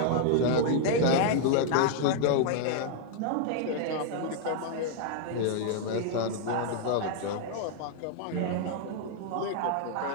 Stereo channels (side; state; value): both; different; correlation 0.00